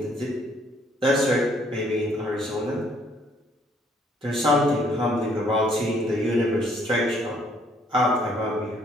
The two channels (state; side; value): normal; both; correlation 0.64